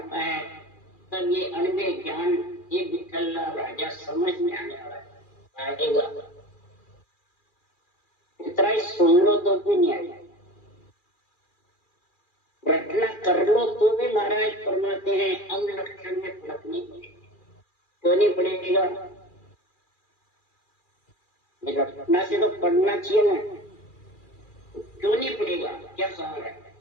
है, तब ये अनवे ज्ञान ये विठल्ला राजा समझ में आने वाला आएगा। इतना ही सुन लो तो भी नहीं आएगा, रटना कर लो तो भी महाराज फरमाते हैं अंग लक्षण में फर्क नहीं पड़ेगा। क्यों नहीं पड़ेगा? रटना से तो पढ़ना चाहिए ना, क्यों नहीं पड़ेगा? क्या सवाल है?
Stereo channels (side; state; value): right; late; 2.4 ms